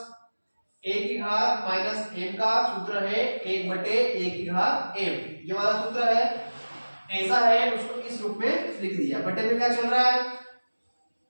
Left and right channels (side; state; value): both; inverted; correlation -1.00